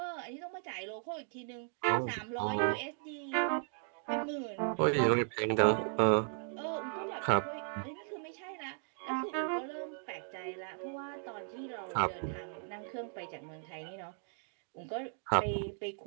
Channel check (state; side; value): silent; left; 54 dB below the other